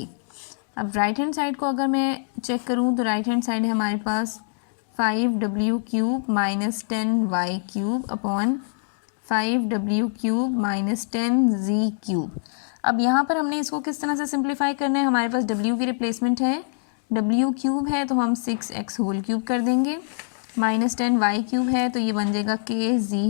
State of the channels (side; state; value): right; silent; digital silence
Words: अब राइट हैंड साइड को अगर मैं चेक करूँ तो राइट हैंड साइड है हमारे पास 5W cube minus 10Y cube upon 5W cube minus 10Z cube. अब यहाँ पर हमने इसको किस तरह से सिंप्लीफाई करना है? हमारे पास W की रिप्लेसमेंट है, W क्यूब है तो हम 6x होल क्यूब कर देंगे, माइनस 10Y क्यूब है तो ये बन जाएगा